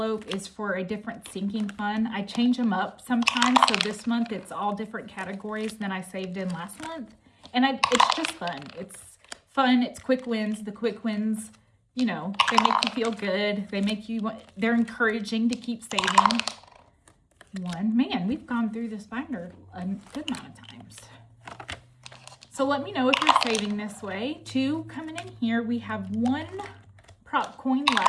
is for a different sinking fund. I change them up sometimes, so this month it's all different categories than I saved in last month. And it's just fun. It's fun. It's quick wins. The quick wins, you know, they make you feel good. They're encouraging to keep saving. Man, we've gone through this binder a good amount of times. So let me know if you're saving this way. 2 coming in here. We have 1 prop coin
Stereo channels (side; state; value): both; identical; correlation 1.00